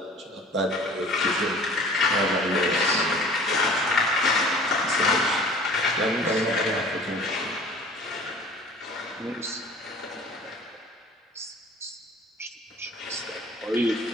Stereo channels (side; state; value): both; normal; correlation 0.47